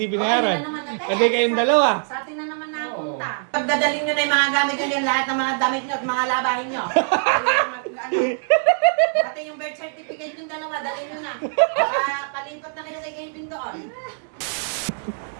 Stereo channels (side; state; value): left; silent; 64 dB below the other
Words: binayaran? Ayun na naman natin. Kasi kayong dalawa. Sa atin na naman napunta. Pagdadalhin nyo na yung mga gamit nyo, yung lahat ng mga damit nyo at mga labahin nyo. Pati yung birth certificate yung dalawa, dalhin nyo na. Palipat na kayo kay Gavin doon.